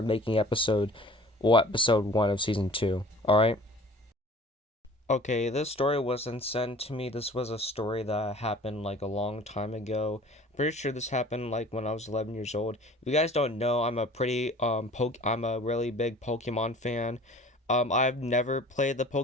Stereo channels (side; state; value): both; normal; correlation 0.47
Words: making episode 1 of season 2. Alright? Okay, this story wasn't sent to me. This was a story that happened like a long time ago. Pretty sure this happened like when I was 11 years old. If you guys don't know, I'm a really big Pokemon fan. I've never played